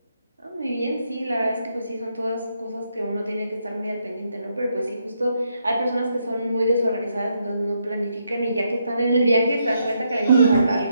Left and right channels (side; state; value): both; inverted; correlation -0.78